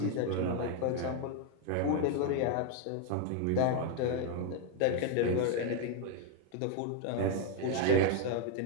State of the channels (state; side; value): different; both; correlation 0.01